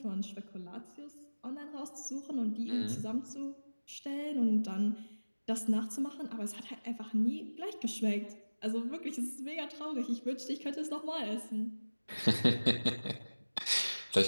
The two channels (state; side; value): inverted; both; correlation -1.00